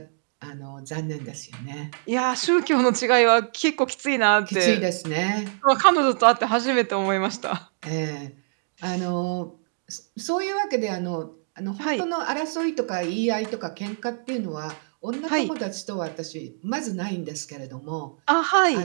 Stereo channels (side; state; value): left; silent; digital silence